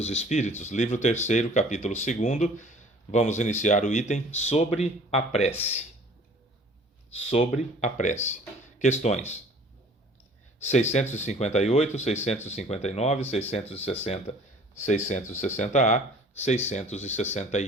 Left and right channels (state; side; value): normal; both; correlation 0.50